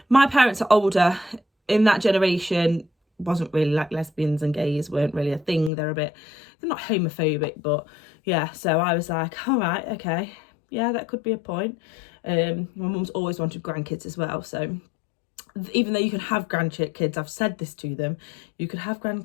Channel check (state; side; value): drops out; right; at 5.7 s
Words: my parents are older. In that generation, wasn't really like lesbians and gays weren't really a thing. They're not homophobic, but yeah. So I was like, all right, okay, yeah, that could be a point. My mum's always wanted grandkids as well. So even though you can have grandkids, I've said this to them, you could have